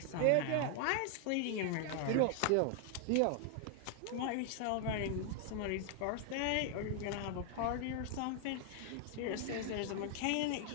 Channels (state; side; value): different; both; correlation 0.00